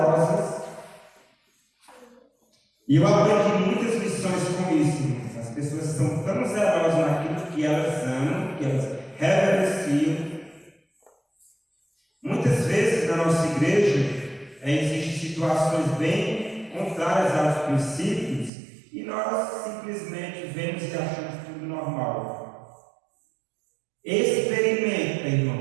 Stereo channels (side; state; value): left; drops out; at 18.5 s